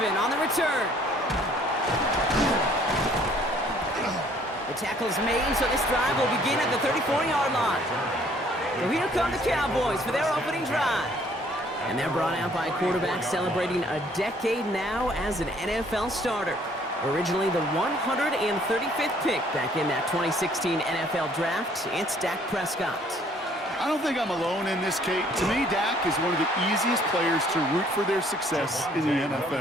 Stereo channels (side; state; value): both; normal; correlation 0.60